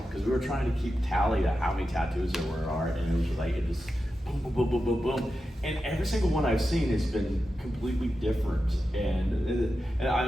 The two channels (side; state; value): both; normal; correlation 0.91